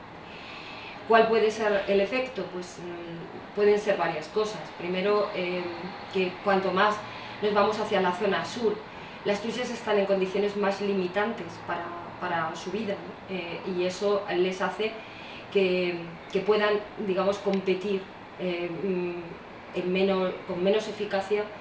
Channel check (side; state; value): both; identical; correlation 1.00